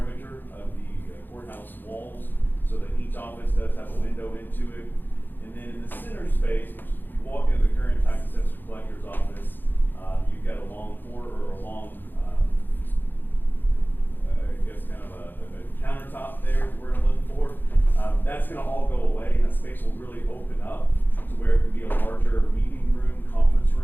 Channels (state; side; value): late; right; 0.092 ms